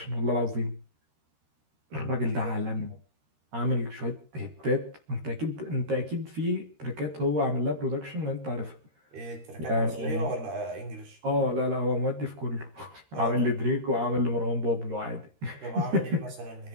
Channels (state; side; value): late; left; 13 ms